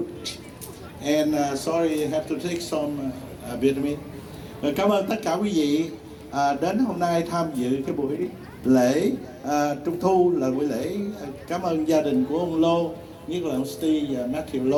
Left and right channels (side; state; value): both; identical; correlation 1.00